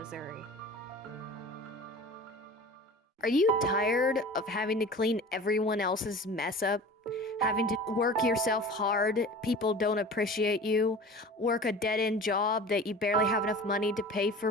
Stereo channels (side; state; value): both; normal; correlation 0.39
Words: Are you tired of having to clean everyone else's mess up? Having to work yourself hard, people don't appreciate you, work a dead end job that you barely have enough money to pay